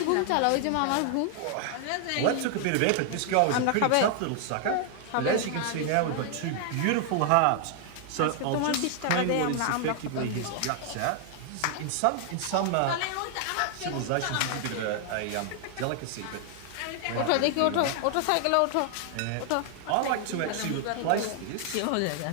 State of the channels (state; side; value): different; both; correlation 0.00